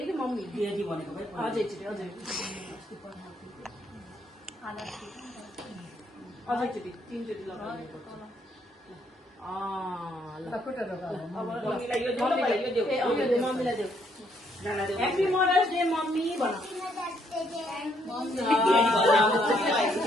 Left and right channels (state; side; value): normal; both; correlation 0.71